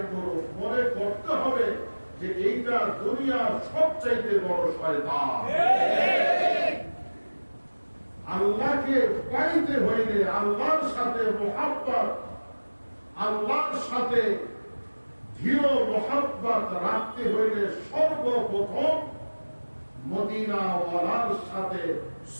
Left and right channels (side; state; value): both; inverted; correlation -1.00